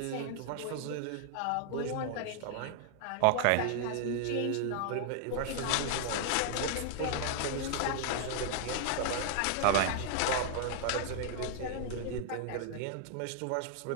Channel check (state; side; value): different; both; correlation 0.00